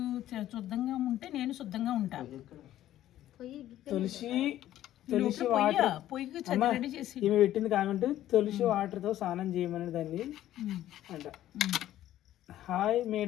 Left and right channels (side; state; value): right; quieter; 13.1 dB